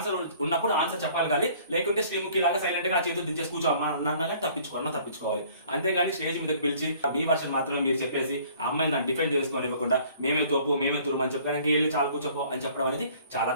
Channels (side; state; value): both; inverted; correlation -0.55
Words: ఉన్నప్పుడు ఆన్సర్ చెప్పాలి. కానీ లేకుంటే శ్రీముఖి లాగా సైలెంట్ గా చేతులు దించేసి కూర్చో అన్నగా తప్పించుకోవాలి. అంతేగాని స్టేజ్ మీదకి పిలిచి మీ వర్షన్ మాత్రమే మీరు చెప్పేసి ఆ అమ్మాయిని దాన్ని డిఫెండ్ చేసుకొని ఇవ్వకుండా మేమే తోపు మేమే తురుము అని చెప్పడానికి వెళ్ళి చాలా కూర్చోపో అని చెప్పడం అనేది చాలా